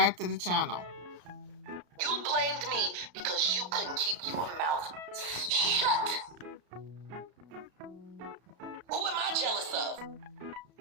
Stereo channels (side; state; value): left; late; 34 ms